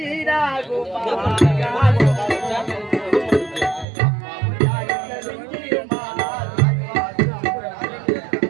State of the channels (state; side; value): drops out; left; at 3.9 s